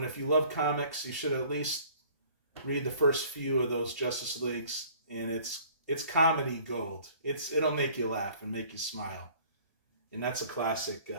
if you love comics, you should at least read the first few of those Justice Leagues, and it's comedy gold. It'll make you laugh and make you smile. And that's a classic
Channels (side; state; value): both; inverted; correlation -0.53